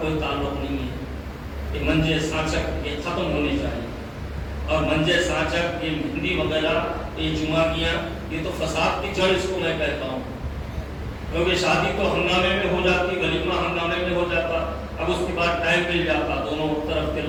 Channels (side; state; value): both; identical; correlation 1.00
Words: کوئی تعلق نہیں ہے۔ یہ منجے، سانچک یہ ختم ہونے چاہیے، اور منجے، سانچک، یہ مہندی وغیرہ، یہ جمعگیاں، یہ تو فساد کی جڑ اس کو میں کہتا ہوں، کیونکہ شادی تو ہنگامے میں ہو جاتی، ولیمہ ہنگامے میں ہو جاتا، اب اس کے بعد ٹائم مل جاتا دونوں طرف کے